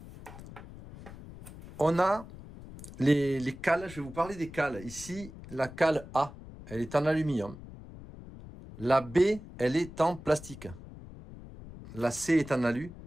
On a les cales, je vais vous parler des cales. Ici, la cale A, elle est en aluminium. La B, elle est en plastique. La C est en alu.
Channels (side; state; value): left; noise; rumble, 15 dB below the sound